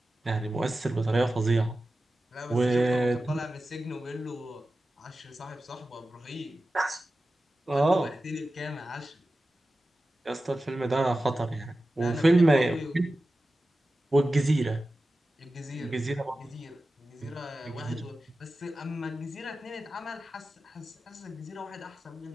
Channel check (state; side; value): normal; both; correlation 0.94